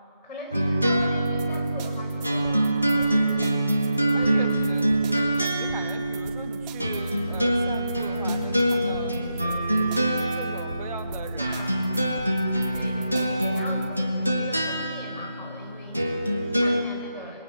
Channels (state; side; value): inverted; both; correlation -0.85